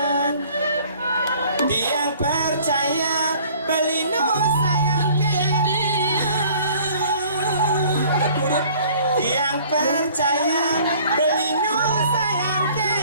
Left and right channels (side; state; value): both; inverted; correlation -0.53